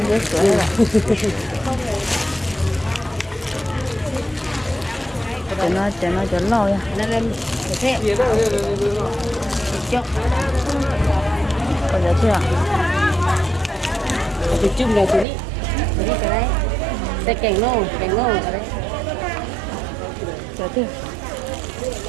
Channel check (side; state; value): left; drops out; at 15.2 s